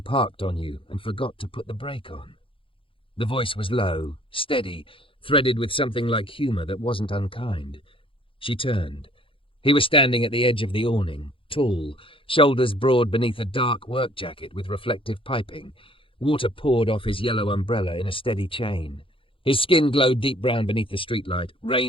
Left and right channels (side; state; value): right; late; 0.25 ms